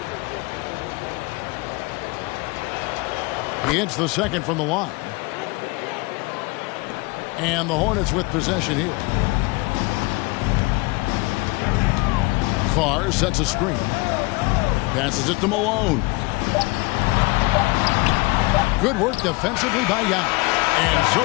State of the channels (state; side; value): quieter; right; 25.2 dB